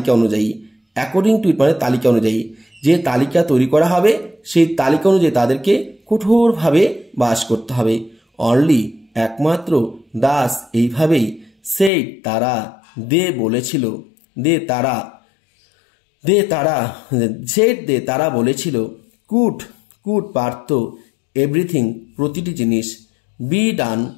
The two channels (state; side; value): drops out; right; at 11.9 s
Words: অনুযায়ী অ্যাকর্ডিং টু ইট মানে তালিকা অনুযায়ী যে তালিকা তৈরি করা হবে সেই তালিকা অনুযায়ী তাদেরকে কঠোরভাবে বাস করতে হবে। অনলি একমাত্র দাস এইভাবেই সেই তারা বলেছিল তারা বলেছিল কুড পারত এভরিথিং প্রতিটি জিনিস